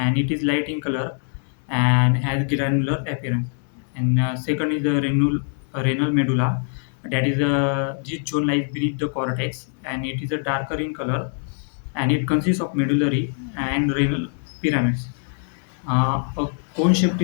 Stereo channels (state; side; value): silent; right; 63 dB below the other